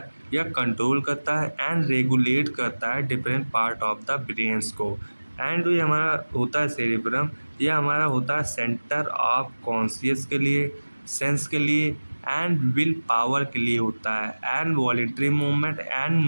यह कंट्रोल करता है एंड रेगुलेट करता है different part of the brains को। एंड जो ये हमारा होता है सेरिब्रम यह हमारा होता है सेंटर ऑफ कॉन्शियस के लिए, सेंस के लिए एंड विल पावर के लिए होता है and voluntary movement and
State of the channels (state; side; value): inverted; both; correlation -1.00